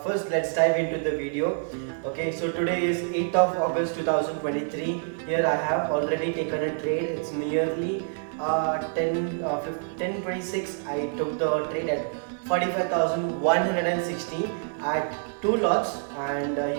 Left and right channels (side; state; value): left; silent; 60 dB below the other